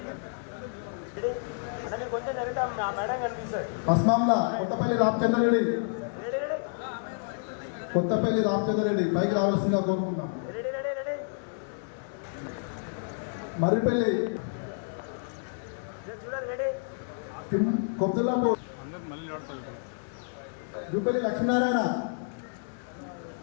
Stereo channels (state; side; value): silent; right; 58 dB below the other